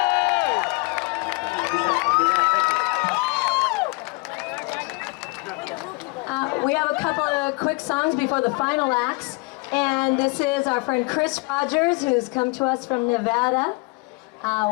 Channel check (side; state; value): right; quieter; 28.3 dB